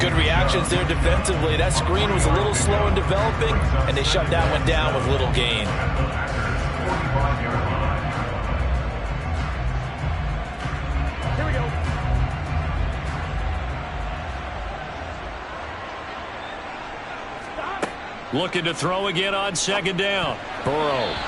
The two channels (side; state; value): both; identical; correlation 1.00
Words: Good reactions there defensively. That screen was a little slow in developing, and they shut that one down with little gain. Here we go. Looking to throw again on second down. Burrow.